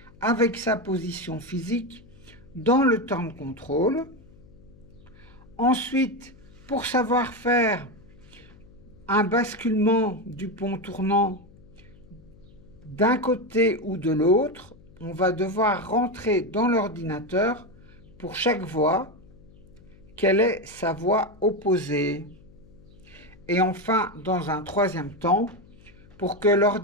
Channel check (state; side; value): noise; left; hum, 24 dB below the sound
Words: avec sa position physique dans le temps de contrôle. Ensuite, pour savoir faire un basculement du pont tournant d'un côté ou de l'autre, on va devoir rentrer dans l'ordinateur pour chaque voie quelle est sa voie opposée. Et enfin, dans un troisième temps, pour que